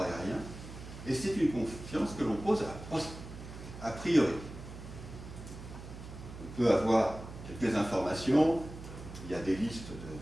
et c'est une confiance que l'on pose a priori. On peut avoir quelques informations, il y a des listes de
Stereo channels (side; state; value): right; noise; hum, 12 dB below the sound